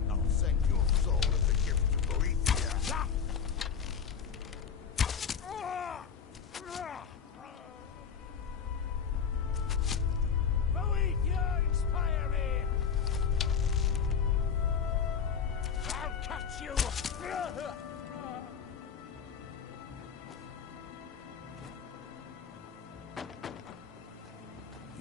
I'll send your soul as a gift to Boethia. Boethia, inspire me! I'll catch you!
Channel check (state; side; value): quieter; right; 6.7 dB